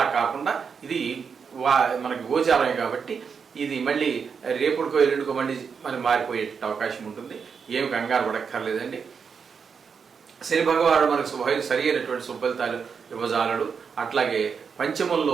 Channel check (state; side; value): quieter; left; 6.1 dB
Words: కాకుండా ఇది మనకి గోచారమే కాబట్టి ఇది మళ్ళీ రేపుడుకో ఎల్లుండికో మళ్ళీ మారిపోయే అవకాశం ఉంటుంది. ఏమి కంగారు పడక్కర్లేదండి. శని భగవానుడు మనకు సరి అయినటువంటి సుఫలితాలు ఇవ్వజాలడు. అట్లాగే